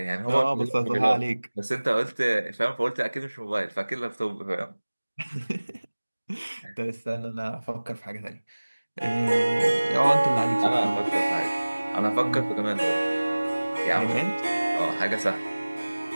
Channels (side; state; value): both; inverted; correlation -1.00